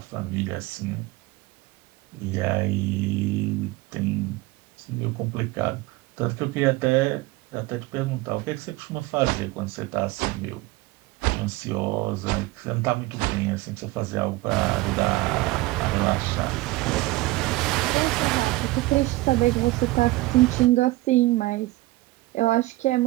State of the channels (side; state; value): left; quieter; 19.8 dB